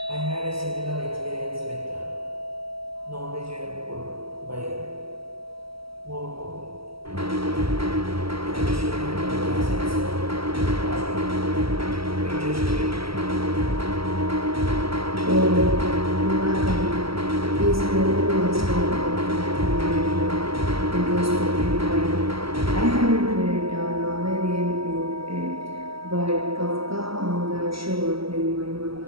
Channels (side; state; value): left; late; 0.75 ms